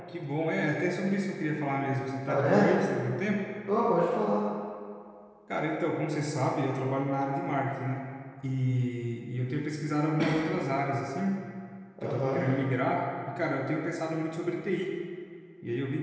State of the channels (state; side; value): identical; both; correlation 1.00